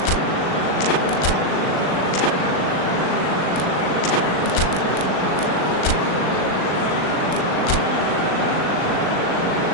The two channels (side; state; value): right; late; 39 ms